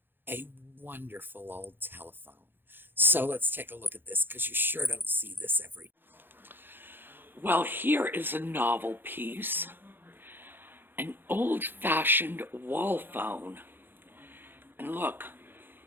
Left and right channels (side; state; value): left; late; 0.10 ms